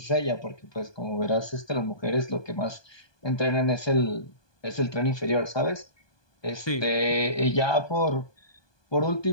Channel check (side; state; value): right; late; 1.2 ms